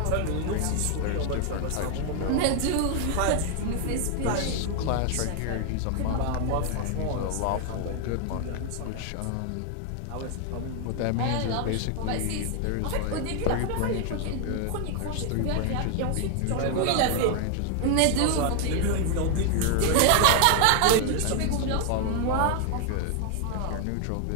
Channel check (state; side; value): different; both; correlation 0.00